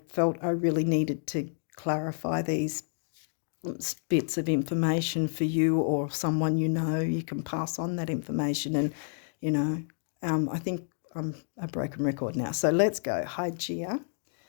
felt I really needed to clarify these bits of information for you or someone you can pass on that information. And I think I'm a broken record now. So let's go. Hygeia.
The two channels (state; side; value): silent; right; digital silence